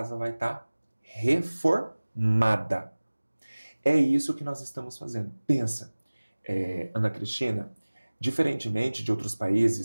vai estar reformada. É isso que nós estamos fazendo. Pensa, Ana Cristina, diferentemente de outros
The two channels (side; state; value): both; inverted; correlation -1.00